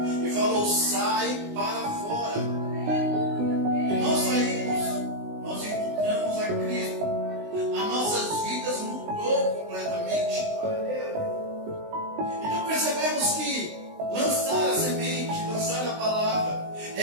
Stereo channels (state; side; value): late; left; 19 ms